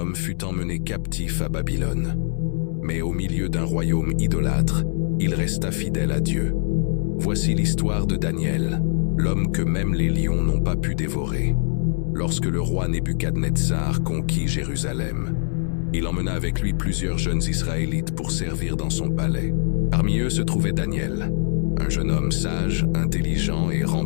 fut emmené captif à Babylone. Mais au milieu d'un royaume idolâtre, il resta fidèle à Dieu. Voici l'histoire de Daniel, l'homme que même les lions n'ont pas pu dévorer. Lorsque le roi Nebuchadnezzar conquit Jérusalem, il emmena avec lui plusieurs jeunes Israélites pour servir dans son palais. Parmi eux se trouvait Daniel, un jeune homme sage, intelligent et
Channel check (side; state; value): right; silent; digital silence